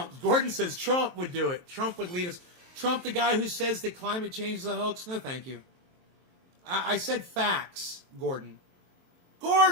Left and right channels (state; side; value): late; left; 23 ms